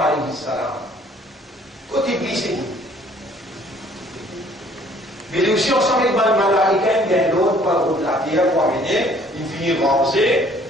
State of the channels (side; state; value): both; normal; correlation 0.58